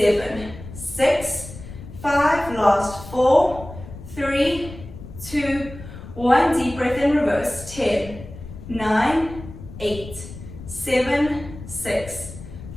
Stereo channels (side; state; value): left; noise; rumble, 14 dB below the sound